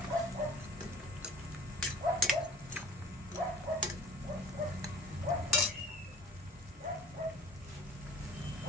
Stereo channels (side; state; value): both; normal; correlation 0.44